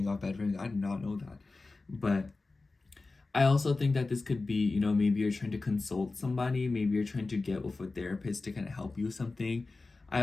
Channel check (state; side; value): quieter; right; 3.6 dB